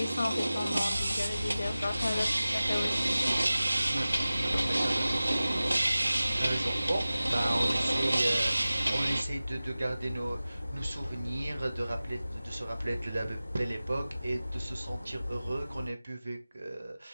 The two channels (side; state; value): both; inverted; correlation -0.97